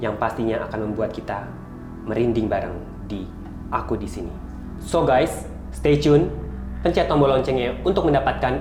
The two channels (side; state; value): both; identical; correlation 1.00